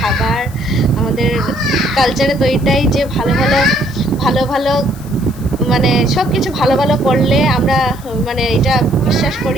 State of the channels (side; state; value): left; noise; hiss, 21 dB below the sound